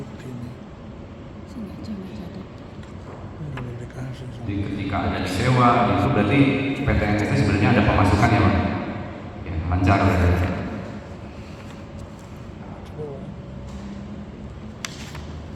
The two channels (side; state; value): both; identical; correlation 1.00